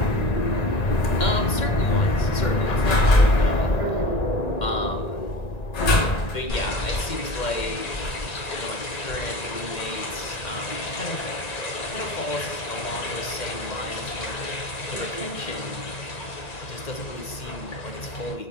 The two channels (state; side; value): late; right; 1.9 ms